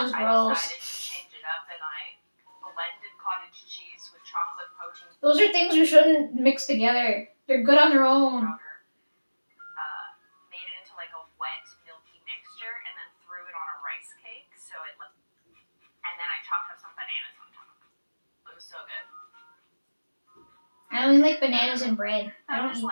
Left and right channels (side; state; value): both; inverted; correlation -1.00